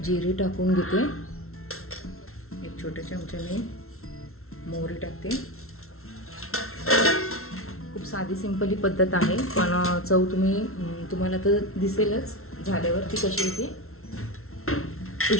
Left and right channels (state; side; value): late; right; 0.62 ms